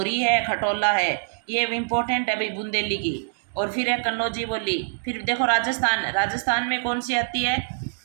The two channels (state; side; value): silent; left; digital silence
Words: है, खटोला है। ये इंपॉर्टेंट है भाई, बुंदेली की। और फिर है कन्नौजी बोली। फिर देखो, राजस्थान में कौन सी आती है,